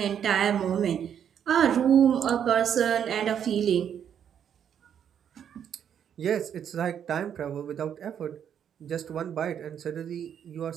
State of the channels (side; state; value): left; quieter; 8.8 dB